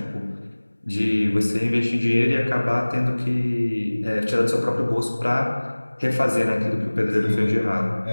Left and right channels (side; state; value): both; inverted; correlation -1.00